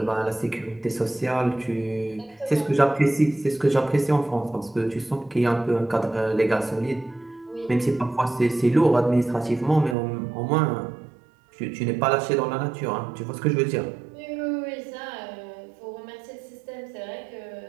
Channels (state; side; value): drops out; left; at 10.0 s